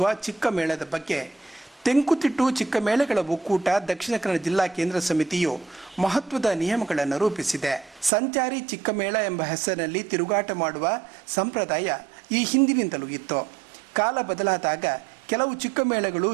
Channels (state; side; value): drops out; left; at 8.1 s